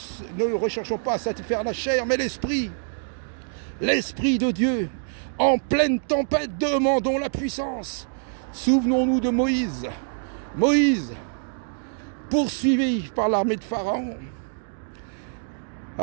recherchons pas à satisfaire la chair, mais l'esprit de Dieu. En pleine tempête, demandons la puissance. Souvenons-nous de Moïse. Moïse, poursuivi par l'armée de Pharaon,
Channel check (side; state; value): left; silent; digital silence